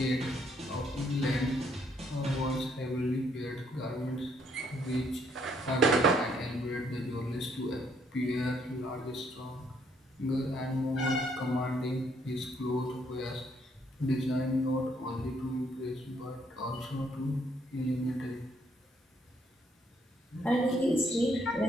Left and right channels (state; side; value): normal; both; correlation 0.69